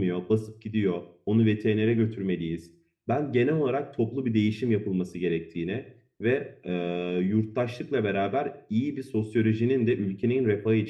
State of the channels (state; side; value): identical; both; correlation 1.00